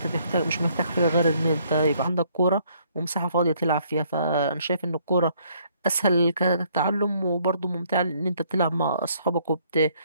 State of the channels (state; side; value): inverted; both; correlation -0.66